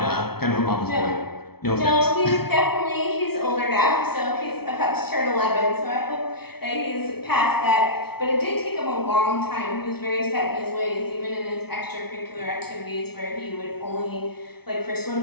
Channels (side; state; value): right; late; 0.96 ms